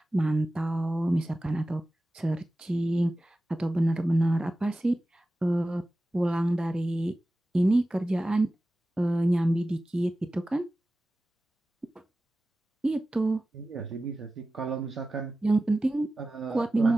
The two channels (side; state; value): both; normal; correlation 0.95